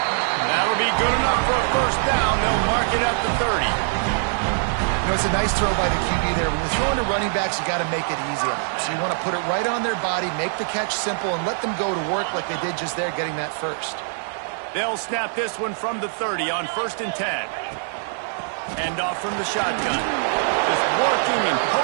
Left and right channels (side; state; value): left; silent; 57 dB below the other